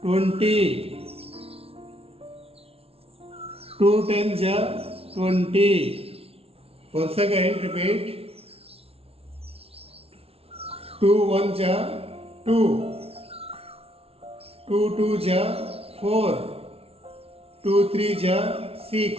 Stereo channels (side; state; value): left; late; 0.29 ms